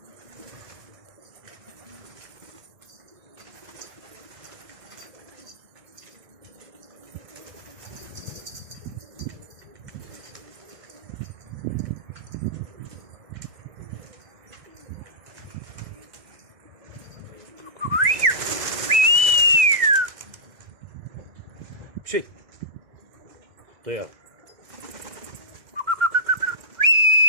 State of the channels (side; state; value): left; late; 2.1 ms